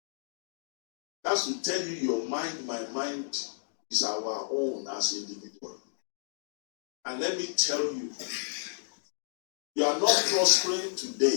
That's to tell you your mind, my mind is our own as individual. And let me tell you, you are not prospering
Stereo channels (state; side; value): silent; right; digital silence